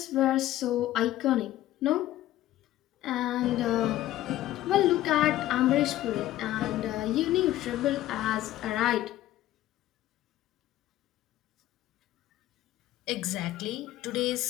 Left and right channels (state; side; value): quieter; right; 14.5 dB